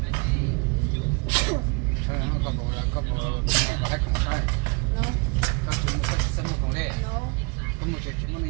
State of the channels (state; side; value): quieter; left; 31.4 dB